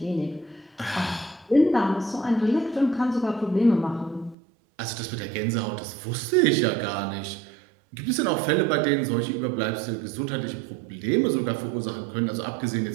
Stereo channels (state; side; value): drops out; left; at 4.4 s